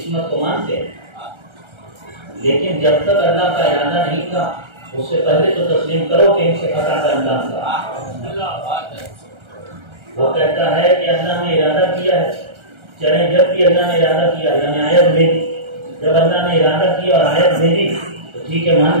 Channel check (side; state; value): left; late; 1.3 ms